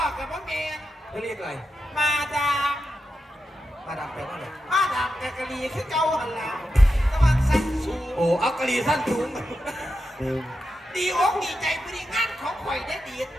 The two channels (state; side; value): normal; both; correlation 0.88